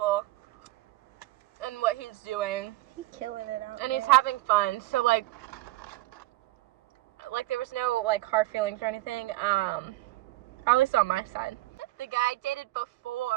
in what he's doing. He's killing it out And there. he's having fun. So, like, there was no, like, hard feelings or anything. At least on my side. The guy I dated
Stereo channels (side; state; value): left; quieter; 18.6 dB